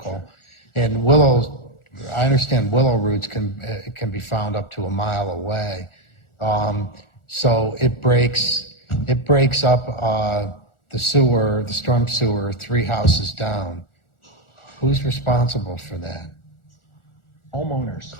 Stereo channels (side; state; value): right; late; 1.4 ms